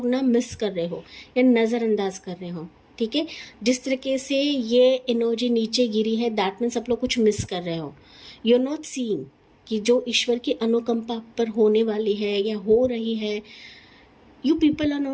ना मिस कर रहे हो या नज़रअंदाज कर रहे हो। ठीक है, जिस तरीके से ये एनर्जी नीचे गिरी है, दैट मीन्स आप लोग कुछ मिस कर रहे हो। यू आर नॉट सीइंग कि जो ईश्वर की अनुकंपा पर होने वाली है या हो रही है, you people are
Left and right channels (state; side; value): identical; both; correlation 1.00